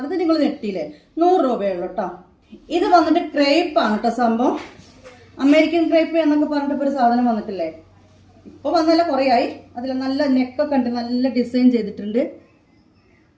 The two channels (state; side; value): identical; both; correlation 1.00